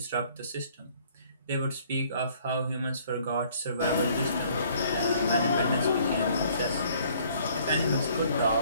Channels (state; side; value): inverted; both; correlation -0.59